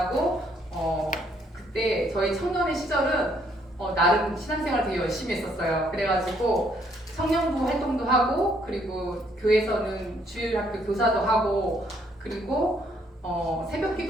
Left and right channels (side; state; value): both; normal; correlation 0.68